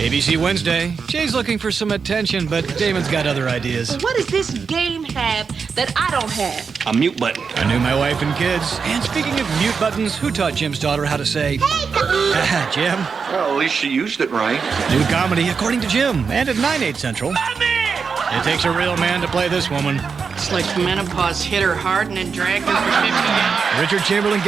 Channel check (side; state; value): left; quieter; 5.6 dB